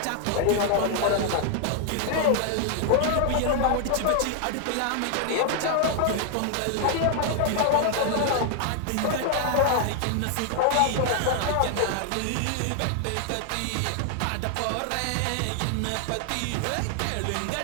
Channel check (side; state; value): both; different; correlation 0.00